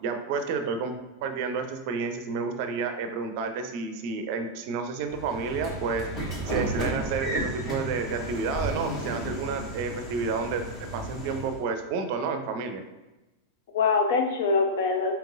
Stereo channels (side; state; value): both; normal; correlation -0.03